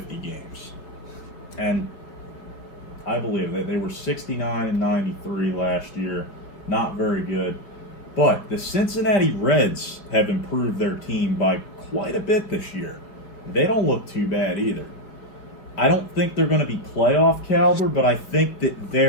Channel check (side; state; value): right; late; 5.4 ms